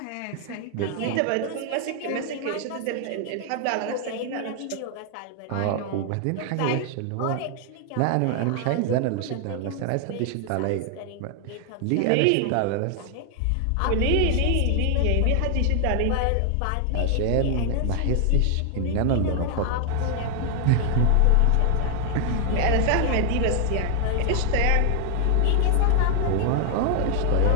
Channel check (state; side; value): different; both; correlation 0.00